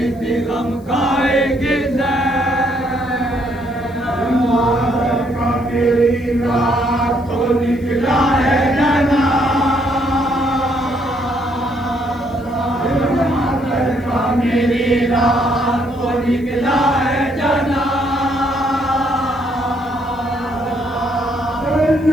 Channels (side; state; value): left; noise; hiss, 30 dB below the sound